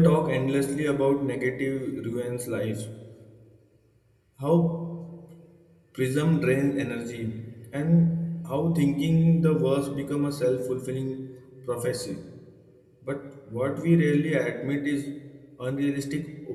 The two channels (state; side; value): identical; both; correlation 1.00